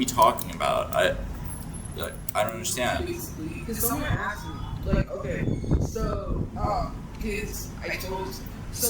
talking about? I don't understand. Because someone asked me, like, okay, so, kids, I told,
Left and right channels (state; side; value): identical; both; correlation 1.00